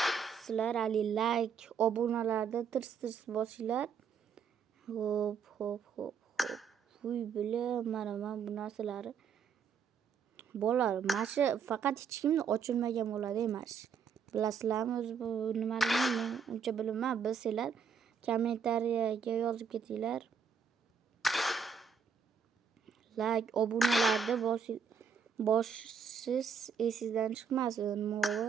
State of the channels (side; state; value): left; quieter; 6.4 dB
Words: sizlar ali like, obunalarda tirs bosinglar. Hop. Uy, bilim, mana bu narsalarni. Bolalar, mana shu faqat hech kimni ochilmagan bo'ladi emas. Bilasizlarmi, o'zi bu nimaligini men uncha bilmayman. Bilsanglar kommentariyaga yozib ketinglar. Like, obunalarni bosish esingizdan chiqmasin.